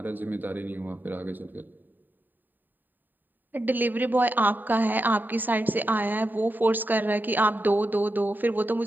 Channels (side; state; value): left; late; 0.090 ms